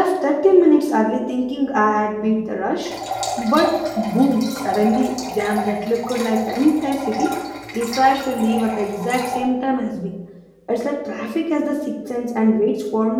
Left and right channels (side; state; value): both; identical; correlation 1.00